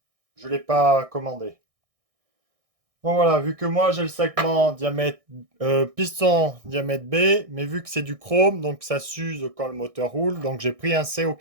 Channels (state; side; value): late; left; 1.6 ms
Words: je ne l'ai pas commandé. Bon voilà, vu que moi, j'ai le segment diamètre piston diamètre B, mais vu que c'est du chrome, donc ça s'use quand le moteur roule, donc j'ai pris un C au